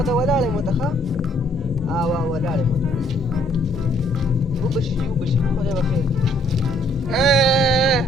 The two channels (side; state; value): both; normal; correlation 0.65